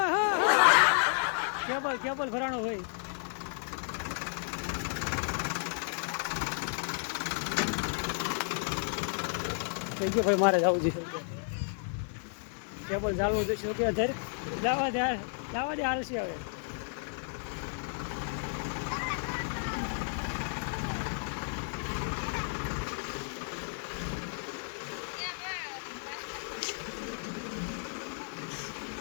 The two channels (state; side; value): silent; right; 56 dB below the other